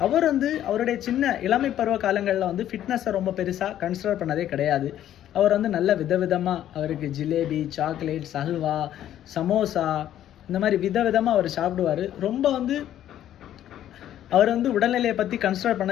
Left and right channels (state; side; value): quieter; right; 11.6 dB